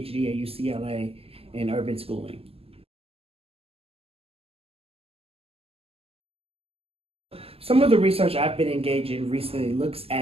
at UCLA in urban schooling. Some of the research I've been engaged in recently looks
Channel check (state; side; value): late; left; 0.29 ms